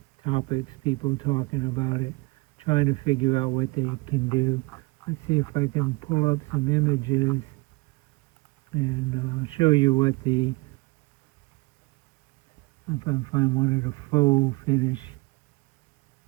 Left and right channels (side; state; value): left; quieter; 26.2 dB